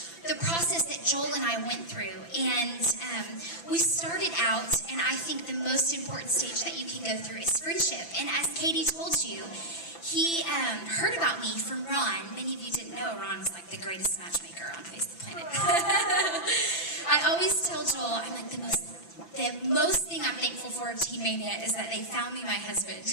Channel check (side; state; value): right; late; 5.9 ms